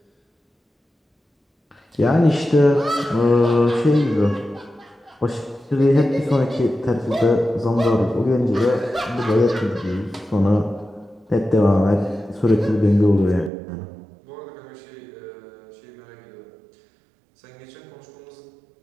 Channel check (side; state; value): left; drops out; at 13.5 s